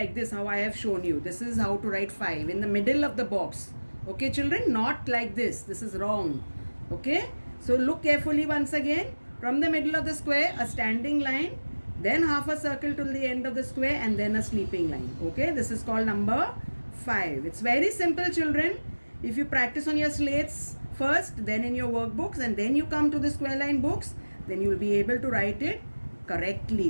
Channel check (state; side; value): inverted; both; correlation -1.00